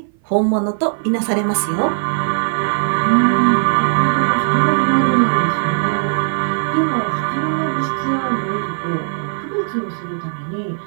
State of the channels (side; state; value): left; silent; 57 dB below the other